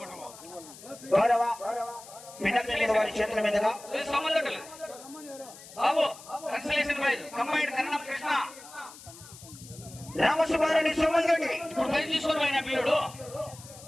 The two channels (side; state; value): left; noise; hiss, 18 dB below the sound